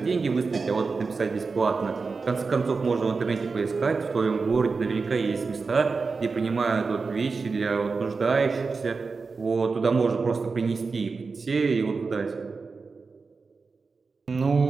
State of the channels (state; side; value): quieter; left; 4.5 dB